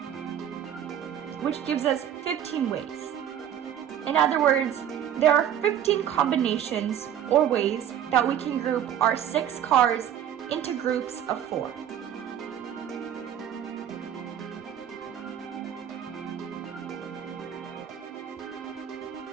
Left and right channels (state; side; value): quieter; left; 9.9 dB